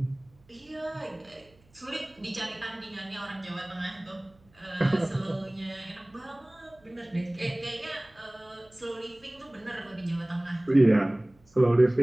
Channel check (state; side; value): noise; right; hum, 30 dB below the sound